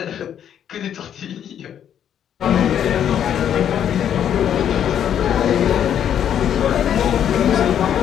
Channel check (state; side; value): quieter; right; 9.5 dB